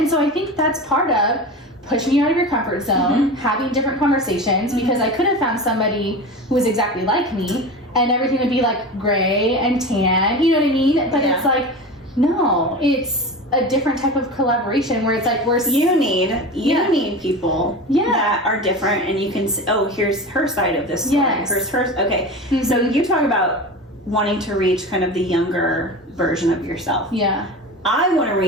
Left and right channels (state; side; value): normal; both; correlation 0.29